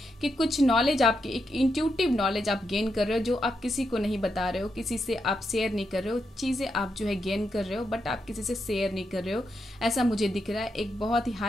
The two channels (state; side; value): normal; both; correlation 0.83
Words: कि कुछ नॉलेज आपकी, एक इंट्यूटिव नॉलेज आप गेन कर रहे हो जो आप किसी को नहीं बता रहे हो, किसी से आप शेयर नहीं कर रहे हो, चीज़ें आप जो है गेन कर रहे हो बट आप किसी से शेयर नहीं कर रहे हो, ऐसा मुझे दिख रहा है। एक बहुत ही